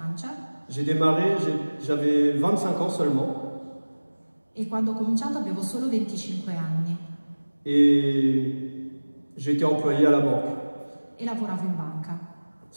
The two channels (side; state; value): both; inverted; correlation -1.00